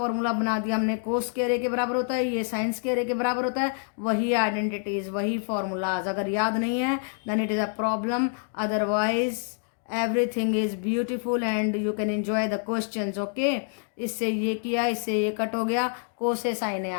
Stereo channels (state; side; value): silent; right; 60 dB below the other